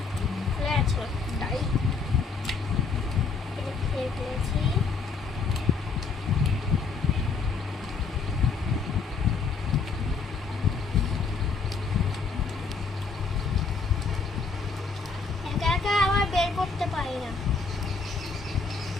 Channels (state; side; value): quieter; right; 4.7 dB